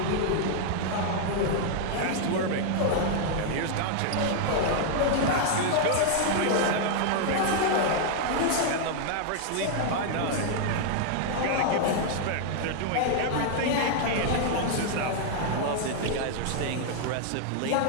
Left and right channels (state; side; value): different; both; correlation 0.00